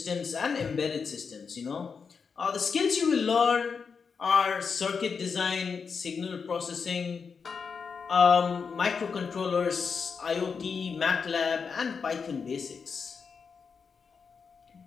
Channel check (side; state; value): right; quieter; 5.7 dB